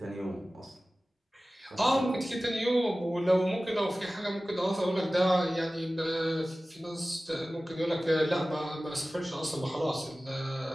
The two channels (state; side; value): normal; both; correlation 0.97